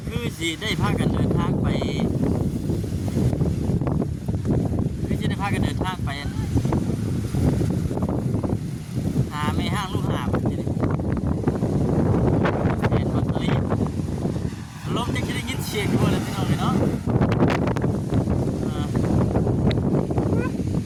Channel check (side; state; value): both; identical; correlation 1.00